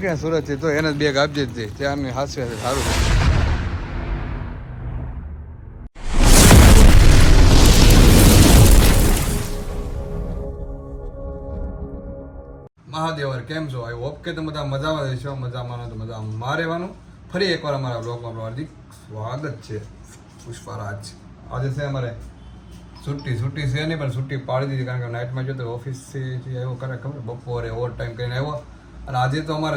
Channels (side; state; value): both; identical; correlation 1.00